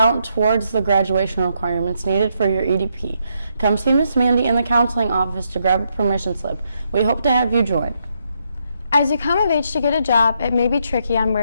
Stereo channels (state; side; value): inverted; both; correlation -0.78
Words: towards the graduation requirements needed for your EDP. Come see Miss Mandy in the counseling office to grab a permission slip. We hope to have you join. As you come of age to get a job, it may be tricky on